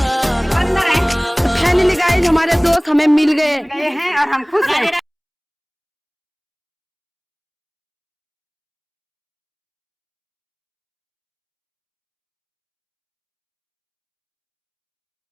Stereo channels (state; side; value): identical; both; correlation 1.00